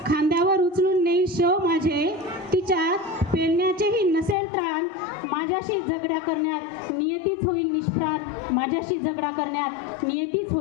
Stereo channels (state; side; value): drops out; right; at 4.4 s